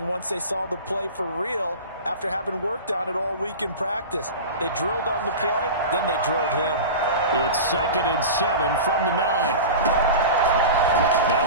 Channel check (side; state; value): both; inverted; correlation -0.30